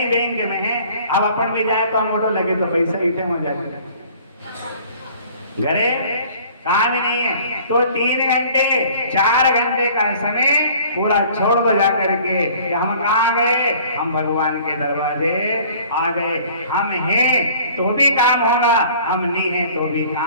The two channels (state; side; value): inverted; both; correlation -0.51